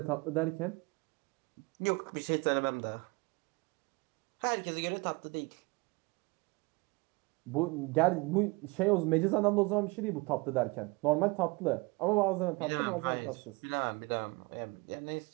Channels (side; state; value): left; quieter; 26.4 dB